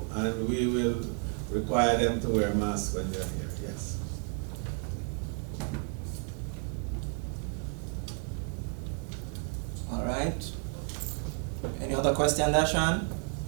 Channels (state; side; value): quieter; left; 36.9 dB